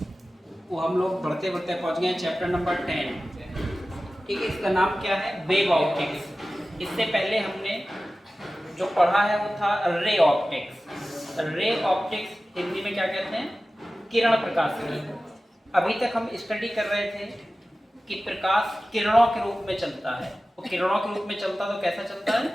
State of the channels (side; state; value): both; normal; correlation 0.96